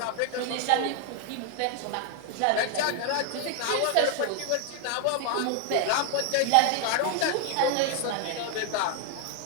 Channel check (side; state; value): both; different; correlation 0.00